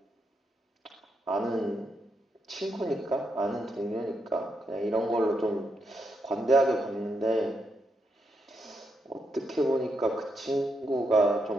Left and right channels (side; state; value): both; normal; correlation 0.81